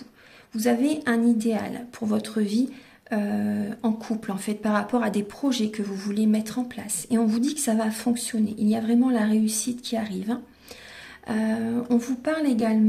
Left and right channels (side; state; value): both; identical; correlation 1.00